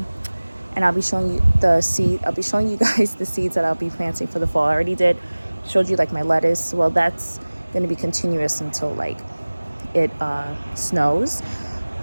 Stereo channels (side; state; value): both; inverted; correlation -1.00